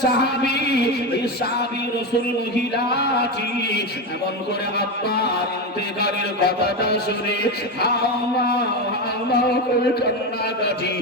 সাহাবী, এই সাহাবী রাসূল মহিলাটি এমন করে আব্বার ইন্তেকালের কথাটা শুনে হাওমাও করে কান্নাকাটি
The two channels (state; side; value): normal; both; correlation 0.16